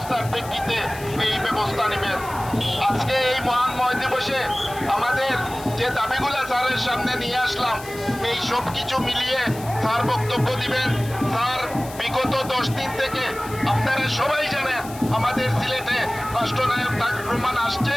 প্রেক্ষিতে এই ব্যবস্থা নেবেন। আজকে এই মহান ময় দিবসে আমাদের যে দাবিগুলো স্যারের সামনে নিয়ে আসলাম, এই সব কিছু মিলিয়ে স্যার বক্তব্য দিবেন। স্যার, বিগত 10 দিন থেকে আপনারা সবাই জানেন আমাদের সিলেটে রাষ্ট্রনায়ক তারেক রহমান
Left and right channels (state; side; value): noise; left; hiss, 16 dB below the sound